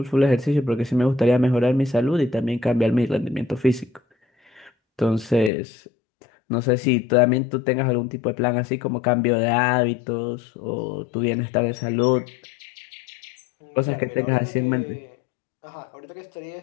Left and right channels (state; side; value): drops out; right; at 5.5 s